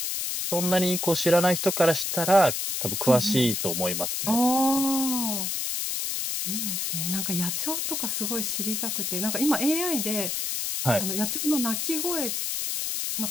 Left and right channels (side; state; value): left; noise; hiss, 1 dB below the sound